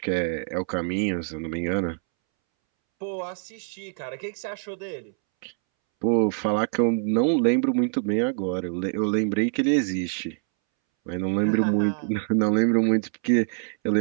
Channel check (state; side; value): silent; left; 62 dB below the other